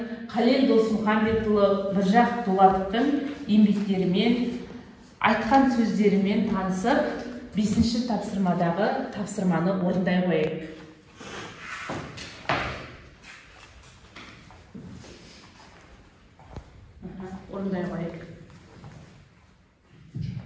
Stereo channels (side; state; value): both; identical; correlation 1.00